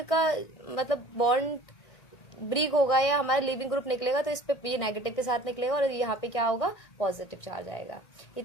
का मतलब बॉन्ड ब्रिक होगा या हमारा लिविंग ग्रुप निकलेगा, तो इस पे ये नेगेटिव के साथ निकलेगा और यहाँ पे क्या होगा, पॉजिटिव चार्ज आएगा।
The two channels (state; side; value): late; right; 1.6 ms